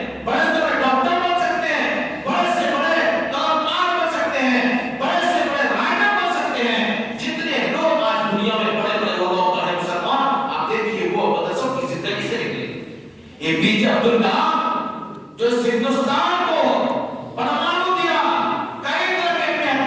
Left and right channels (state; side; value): identical; both; correlation 1.00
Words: بڑے سے بڑے ڈاکٹر بن سکتے ہیں، بڑے سے بڑے کلاکار بن سکتے ہیں، بڑے سے بڑے رائٹر بن سکتے ہیں۔ جتنے لوگ آج دنیا میں بڑے بڑے عہدوں پر ہیں مسلمان، آپ دیکھیے وہ مدرسوں کی زندگی سے نکلے۔ اے پی جے عبد الکلام جو اس ہندوستان کو پرمانو دیا، کئی طرح کے